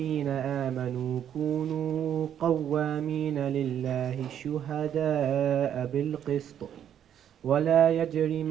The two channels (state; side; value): quieter; left; 9.7 dB